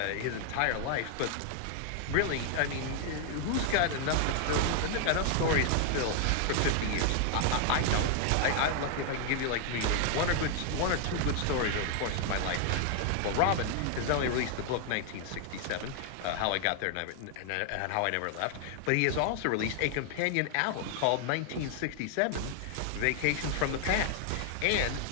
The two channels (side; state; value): both; different; correlation 0.00